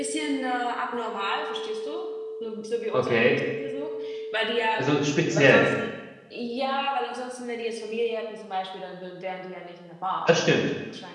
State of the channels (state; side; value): identical; both; correlation 1.00